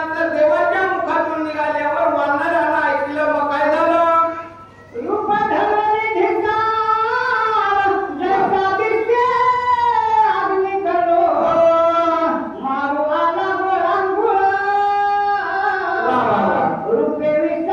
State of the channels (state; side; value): identical; both; correlation 1.00